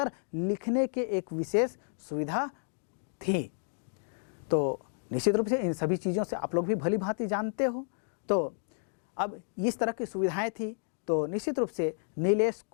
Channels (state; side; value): silent; right; digital silence